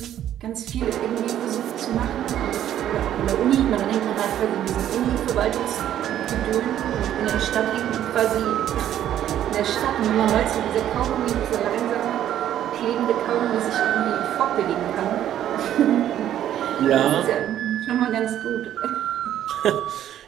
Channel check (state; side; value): quieter; left; 11.3 dB